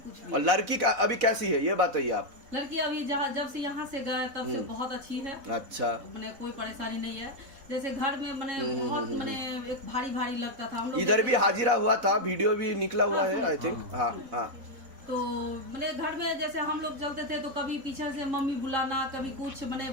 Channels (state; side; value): late; left; 4.0 ms